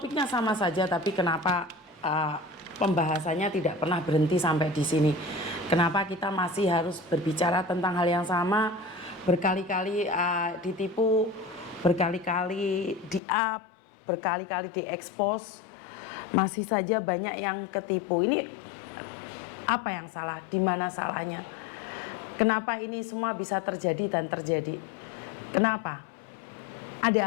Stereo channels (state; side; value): drops out; right; at 13.2 s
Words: sama saja, tapi kenapa pembahasannya tidak pernah berhenti sampai di sini? Kenapa kita masih harus berbicara tentang hal yang sama, berkali-kali ditipu, berkali-kali di-up, berkali-kali diekspos, masih saja banyak yang ketipu. Ini apa yang salah? Di mana salahnya? Kenapa ini semua bisa terjadi dan terjadi? Kenapa?